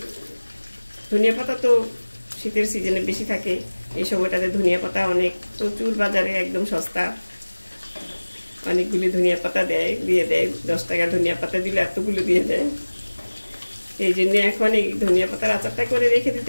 ধনিয়া পাতা তো শীতের সিজনে বেশি থাকে। এই সময়টাতে ধনিয়া পাতা প্রচুর বাজারে একদম সস্তা, অনেকগুলি ধনিয়া পাতা দিয়ে দেয়। 10 টাকার ধনিয়া পাতা দিলে এতগুলো দিয়ে দেয়। এই জন্য এখন এই ধনিয়া পাতার আচারটা করে রেখে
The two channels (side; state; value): both; inverted; correlation -1.00